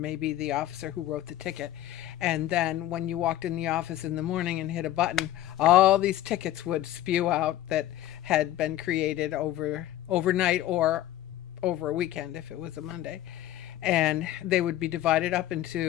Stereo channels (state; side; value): quieter; right; 13.6 dB